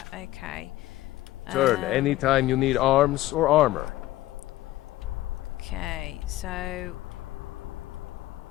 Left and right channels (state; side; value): quieter; right; 16.2 dB